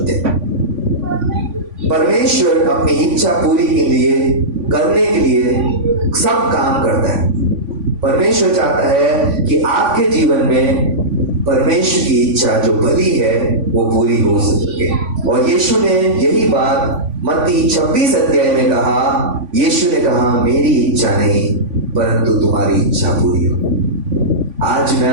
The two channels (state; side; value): late; left; 3.5 ms